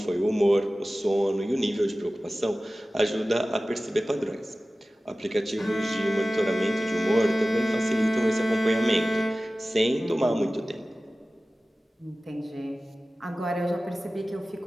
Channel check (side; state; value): both; normal; correlation 0.96